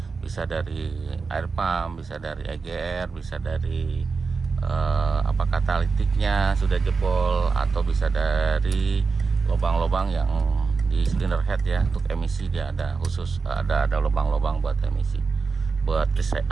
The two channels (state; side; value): quieter; left; 4.7 dB